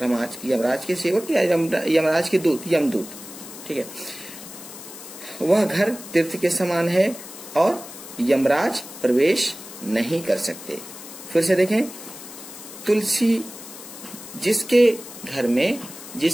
यमराज के सेवक या यमराज के दूत, यमदूत। ठीक है, वह घर तीर्थ के समान है और यमराज प्रवेश नहीं कर सकते। फिर से देखें, तुलसी, जिसके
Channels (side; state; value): left; noise; hiss, 14 dB below the sound